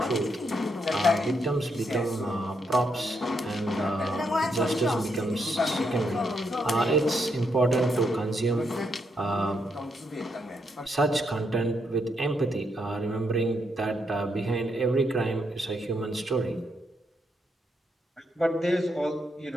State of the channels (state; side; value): normal; both; correlation 0.78